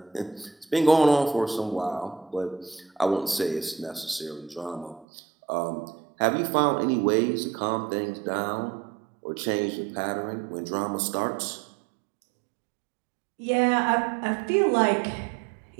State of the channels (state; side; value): drops out; left; at 5.1 s